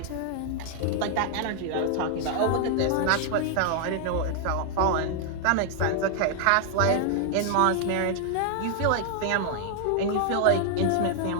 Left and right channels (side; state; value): both; different; correlation 0.00